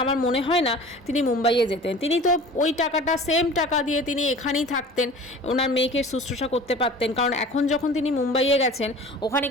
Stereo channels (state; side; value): normal; both; correlation 0.42